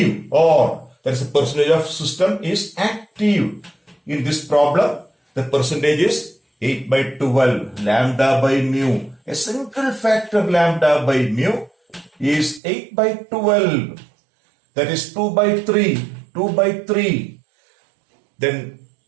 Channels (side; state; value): left; drops out; at 12.6 s